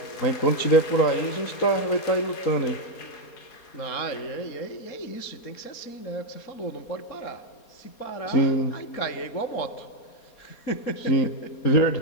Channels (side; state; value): right; late; 4.3 ms